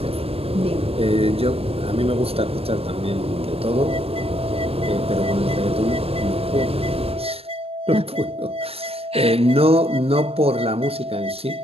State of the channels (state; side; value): late; left; 0.28 ms